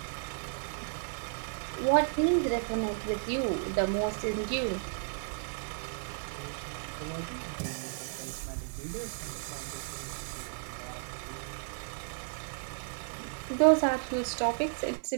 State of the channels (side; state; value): left; silent; 55 dB below the other